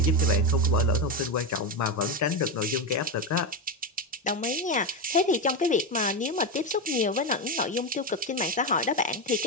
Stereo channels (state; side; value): normal; both; correlation 0.13